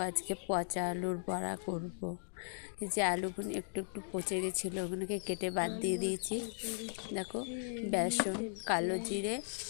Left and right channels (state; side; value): silent; right; digital silence